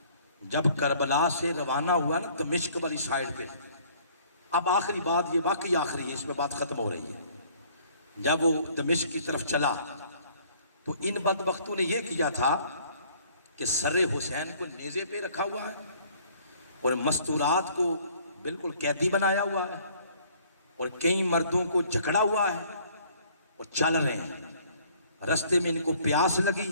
جب کربلا سے روانہ ہوا نا دمشق والی سائیڈ پہ، اب آخری بات، یہ واقعی آخری ہے، اس میں بات ختم ہو رہی ہے، جب وہ دمشق کی طرف چلا تو ان بدبختوں نے یہ کیا تھا کہ سر حسین کو نیزے پہ رکھا ہوا ہے اور مستورات کو بالکل قیدی بنایا ہوا ہے، اور کئی مردوں کو جکڑا ہوا ہے اور چل رہے ہیں۔ رستے میں ان کو پیاس لگی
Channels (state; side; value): inverted; both; correlation -0.58